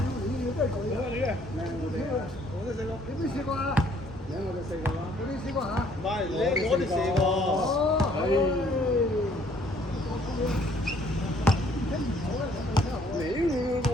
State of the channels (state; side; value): normal; both; correlation 0.62